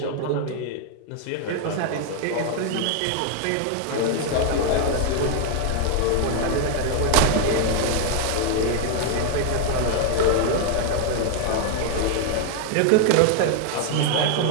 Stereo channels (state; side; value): different; both; correlation 0.00